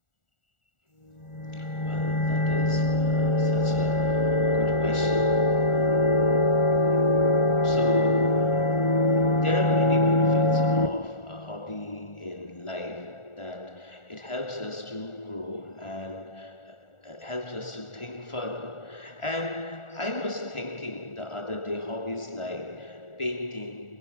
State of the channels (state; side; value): late; right; 1.4 ms